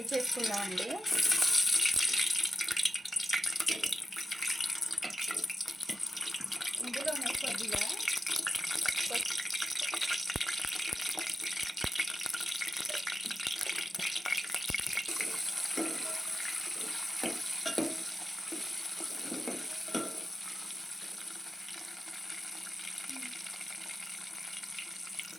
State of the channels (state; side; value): normal; both; correlation 0.90